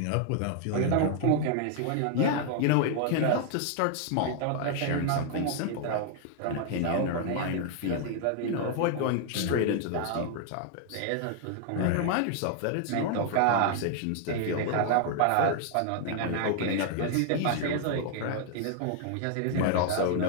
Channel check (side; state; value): both; different; correlation 0.00